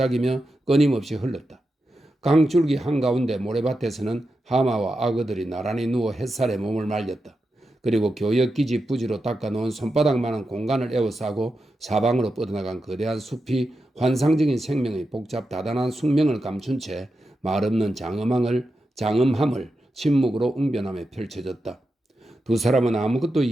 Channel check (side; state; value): both; normal; correlation 0.89